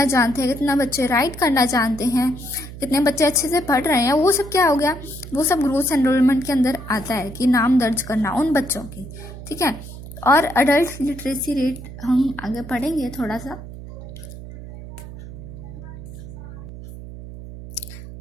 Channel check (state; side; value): noise; right; hum, 13 dB below the sound